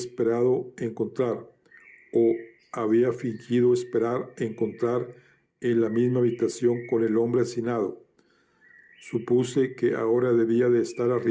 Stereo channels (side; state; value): both; identical; correlation 1.00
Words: encontrar, o había fingido esperar encontrar en la misma habitación con el hombre asesinado. Supuse que ahora debía de estar